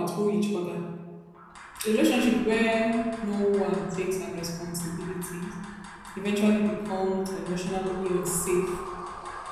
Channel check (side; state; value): both; identical; correlation 1.00